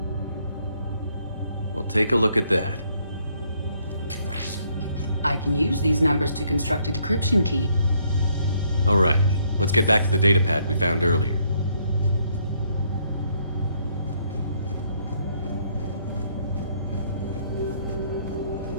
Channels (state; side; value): inverted; both; correlation -0.69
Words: Well, take a look at that. I can use these numbers to construct a decryption key. All right, let's get back to the datapad we found earlier.